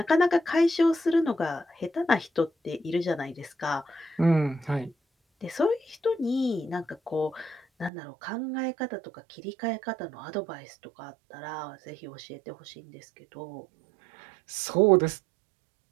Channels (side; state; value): left; drops out; at 7.9 s